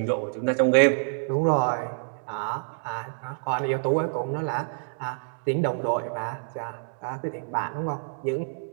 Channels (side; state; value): left; silent; digital silence